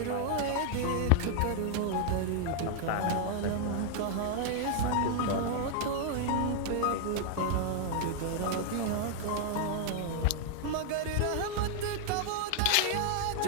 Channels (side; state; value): both; different; correlation 0.00